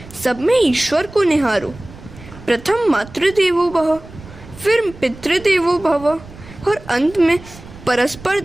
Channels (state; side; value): noise; right; rumble, 18 dB below the sound